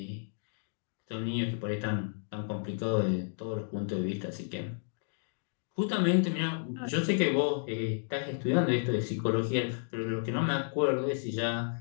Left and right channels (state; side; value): silent; right; digital silence